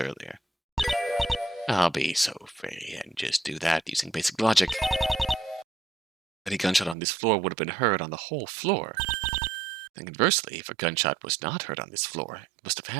I'll be so free and just do that using basic logic. Any gunshot on this floor would have been heard on the whole floor. And conversely, if a gunshot was not heard on this floor, it must have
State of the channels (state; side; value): drops out; left; at 7.0 s